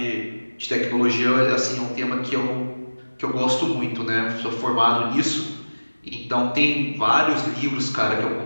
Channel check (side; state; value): both; inverted; correlation -1.00